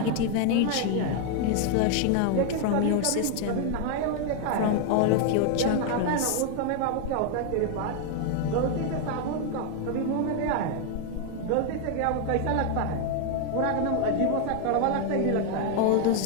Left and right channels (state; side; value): different; both; correlation 0.00